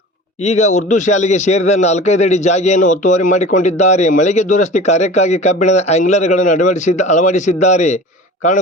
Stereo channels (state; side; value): normal; both; correlation 0.38